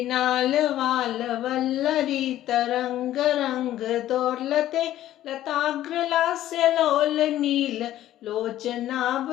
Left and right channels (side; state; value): right; quieter; 13.2 dB